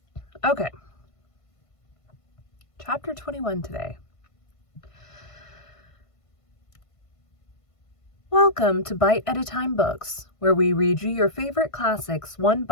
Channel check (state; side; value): late; right; 1.5 ms